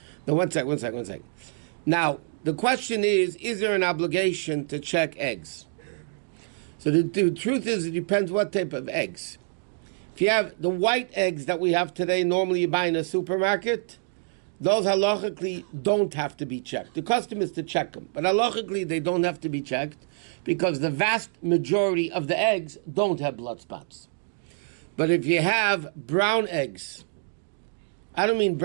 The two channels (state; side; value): silent; left; 61 dB below the other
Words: Now, one second. Now, the question is there an obligation to check eggs? So the truth is, it depends what type of eggs. If you have the white eggs that we have today, normally you buy in a supermarket, those halachically don't have to be checked. The custom is to check them, but halachically they don't have to be checked because the vast majority of the eggs don't have blood spots. But if you have brown eggs, I don't mean